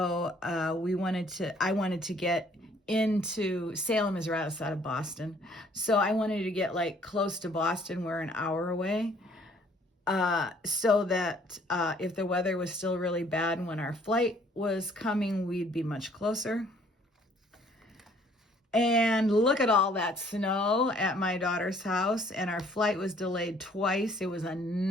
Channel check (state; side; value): normal; both; correlation 0.60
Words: I wanted to get into, Salem is right outside of Boston. So I wanted to get like close to Boston. We're an hour away. So that if the weather was still really bad when our flight was coming, we'd be much closer. And look at all that snow at my daughter's house, and our flight was delayed twice. It was a